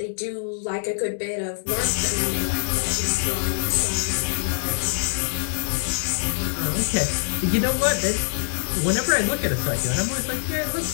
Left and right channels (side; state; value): right; silent; digital silence